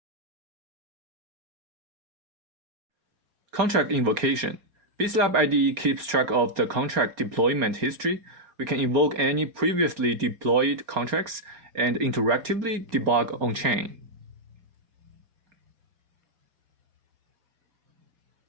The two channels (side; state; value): left; late; 4.3 ms